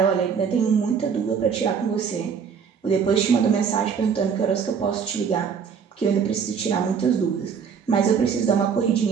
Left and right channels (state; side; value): quieter; left; 6.7 dB